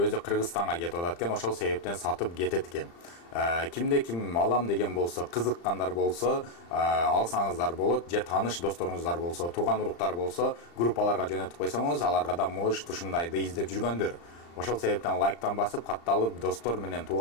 Кыргызстанга кетип атат экен, ошол себептен сатып кетет экен. Кимде ким алам деген болсо, кызыккандар болсо, алсаңыздар болот, же тааныш досторуңуздар болсо, тууган уруктар болсо, группаларга жөнөтүп койсоңуз, аларга да может ушундайды издеп жүргөндөр. Ошол себептен лайктан басып, катталып, достор менен,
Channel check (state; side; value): late; right; 35 ms